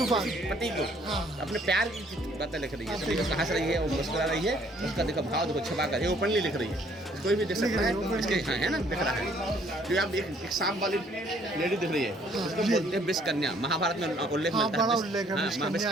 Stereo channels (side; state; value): both; normal; correlation 0.62